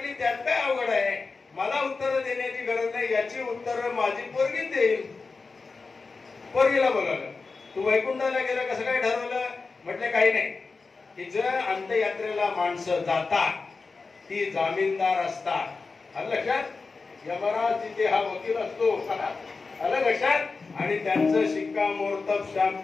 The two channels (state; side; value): quieter; right; 4.2 dB